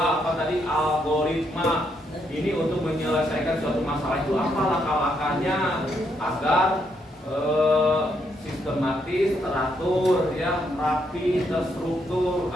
apa tadi? Algoritma. Ini untuk menyelesaikan suatu masalah itu apa langkah-langkahnya agar sistematis, teratur, ya, rapi, terstruktur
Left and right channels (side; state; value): both; normal; correlation 0.76